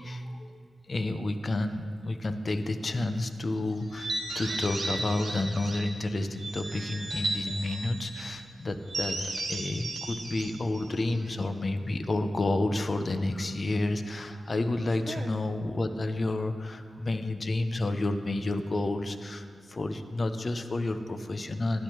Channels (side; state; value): both; normal; correlation 0.94